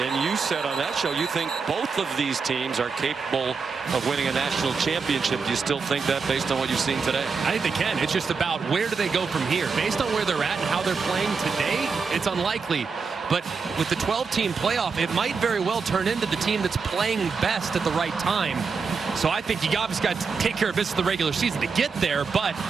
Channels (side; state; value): left; quieter; 5.1 dB